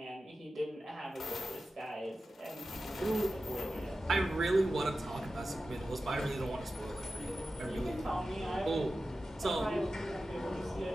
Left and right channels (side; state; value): both; normal; correlation 0.93